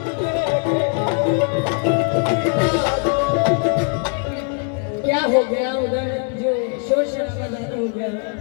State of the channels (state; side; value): quieter; right; 39.3 dB